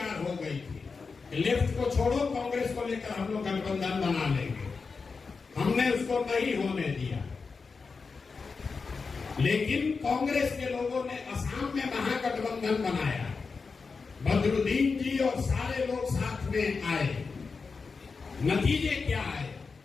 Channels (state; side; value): quieter; right; 4.8 dB